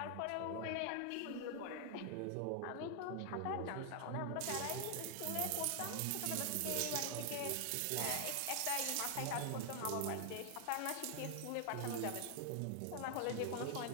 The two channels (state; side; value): different; both; correlation 0.00